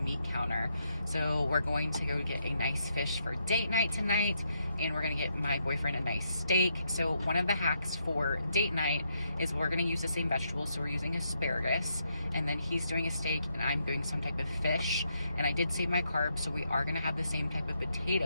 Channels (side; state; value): both; inverted; correlation -0.78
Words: counter. So we're going to go get a nice fish for date night tonight, and we're gonna get my boyfriend a nice steak. So one of the hacks for date night is we're gonna use the same vegetables. So we're using asparagus, and then he's doing a steak and I'm doing some type of fish. And I did save my carbs, so we are gonna have the same type of